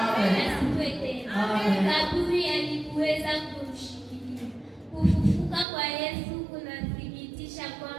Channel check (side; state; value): left; drops out; at 5.7 s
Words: tena. Kaburi halikuweza kumshikilia. Kufufuka kwa Yesu kunathibitisha